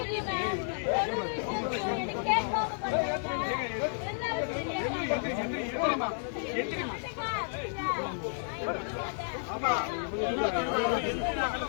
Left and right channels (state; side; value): silent; right; 57 dB below the other